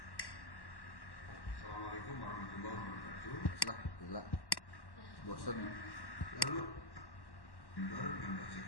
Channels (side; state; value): right; late; 1.1 ms